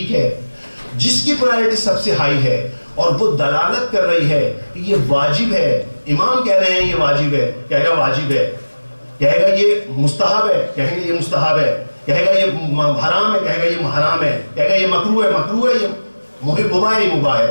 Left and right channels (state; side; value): inverted; both; correlation -1.00